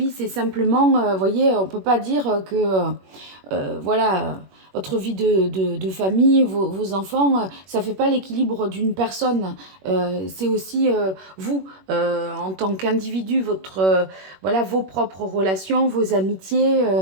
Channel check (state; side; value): late; left; 21 ms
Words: c'est simplement, vous voyez, on peut pas dire que voilà, votre vie de famille, vos enfants, ça fait pas l'équilibre d'une personne. C'est aussi vous, en tant qu'individu, votre, voilà, vos propres relations, vos amitiés,